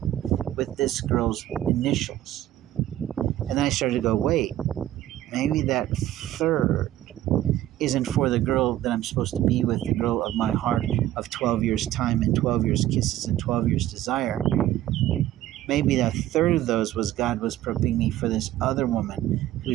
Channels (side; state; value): left; quieter; 13.6 dB